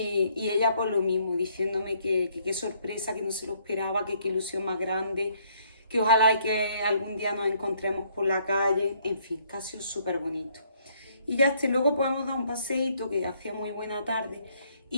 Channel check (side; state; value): both; inverted; correlation -0.67